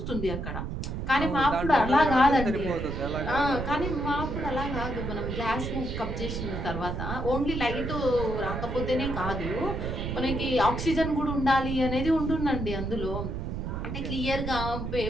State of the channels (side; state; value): right; noise; rumble, 4 dB below the sound